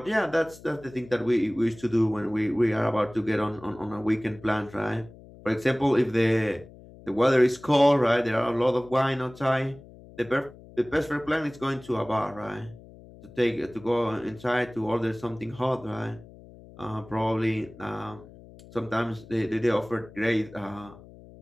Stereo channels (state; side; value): noise; left; hum, 20 dB below the sound